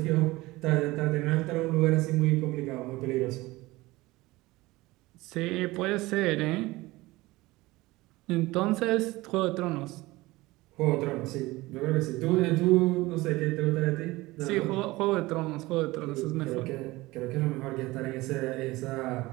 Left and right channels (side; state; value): left; quieter; 20.1 dB